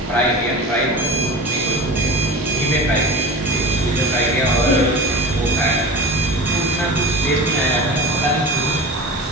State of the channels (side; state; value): both; normal; correlation 0.33